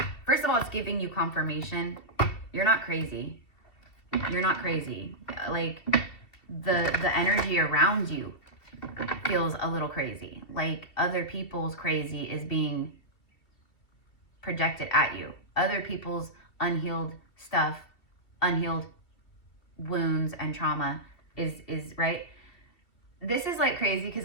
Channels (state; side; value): late; right; 2.7 ms